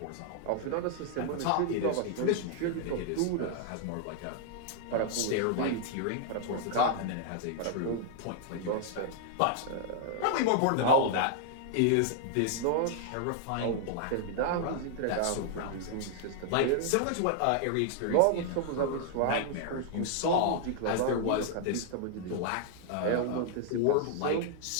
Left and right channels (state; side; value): different; both; correlation -0.01